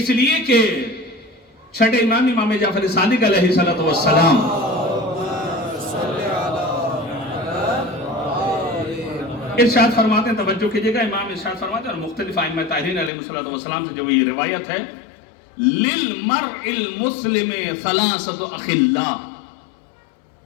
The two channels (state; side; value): drops out; right; at 13.1 s